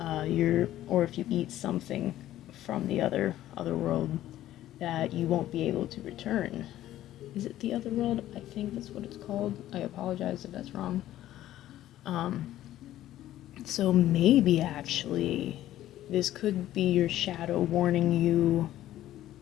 or if you eat something from the other world, that you won't be able to return. Is it the other world? I think that's what it's called. I apologize if that's wrong. So maybe actually this could be your shadow warning you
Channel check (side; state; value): right; quieter; 13.5 dB